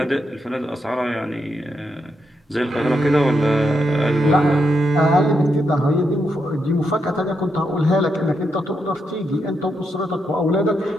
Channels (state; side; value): normal; both; correlation 0.82